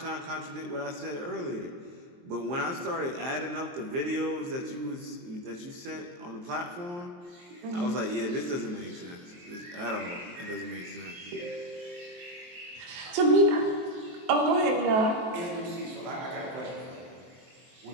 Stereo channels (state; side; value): late; left; 23 ms